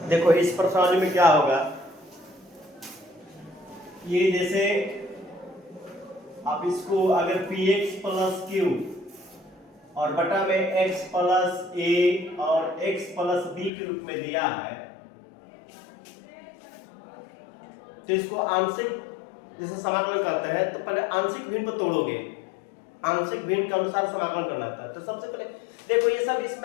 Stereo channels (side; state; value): right; drops out; at 13.7 s